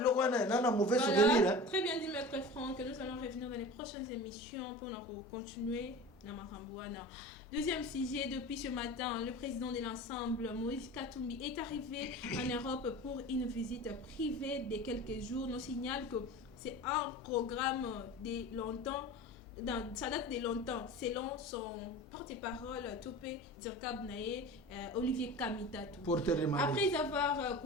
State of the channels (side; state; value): both; normal; correlation 0.35